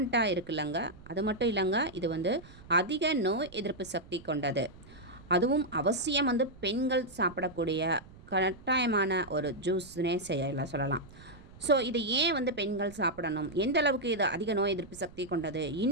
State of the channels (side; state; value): right; noise; rumble, 21 dB below the sound